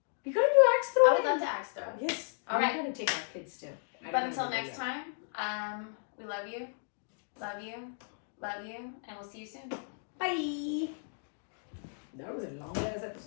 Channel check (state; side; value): silent; right; digital silence